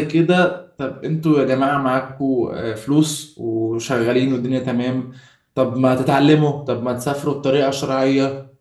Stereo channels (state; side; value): identical; both; correlation 1.00